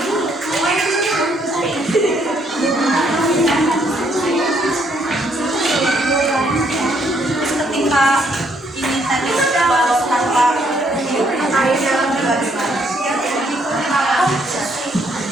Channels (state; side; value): normal; both; correlation 0.70